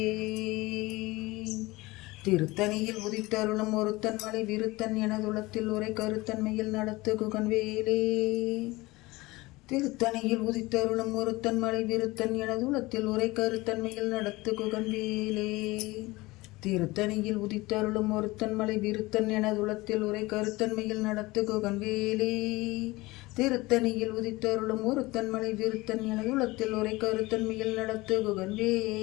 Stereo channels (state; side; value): quieter; right; 21.2 dB